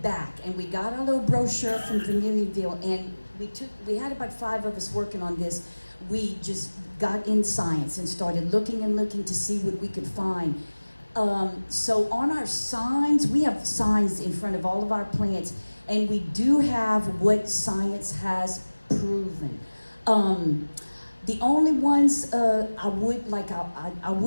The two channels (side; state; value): both; inverted; correlation -1.00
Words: and we got our little brochure from Vermilionville, and we had about 5 of us working on this. We just got in science and started looking to see what we could find. So on our signs, we have signs in front of all of our plants, and we do have what science has proven. The only ones I